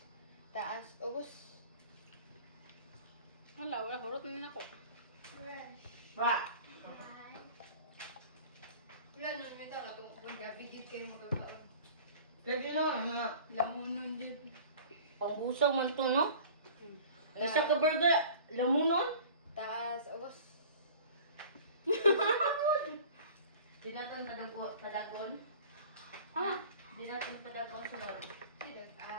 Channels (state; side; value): inverted; both; correlation -0.44